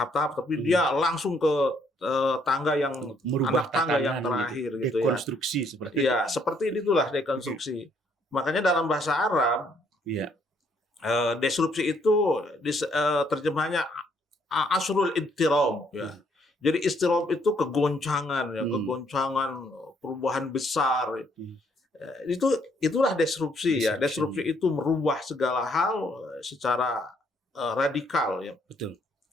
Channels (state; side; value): normal; both; correlation 0.68